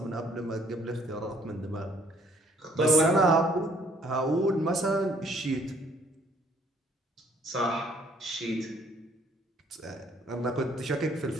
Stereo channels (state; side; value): normal; both; correlation 0.63